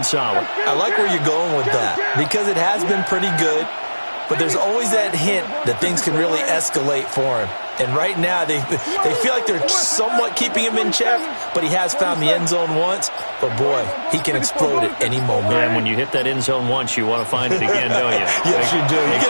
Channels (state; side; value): inverted; both; correlation -1.00